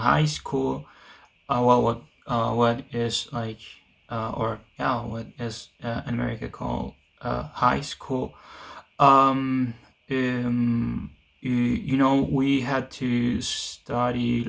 school, well, what is like or yeah, what is in America called high school. Um, um, we had to study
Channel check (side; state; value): both; identical; correlation 1.00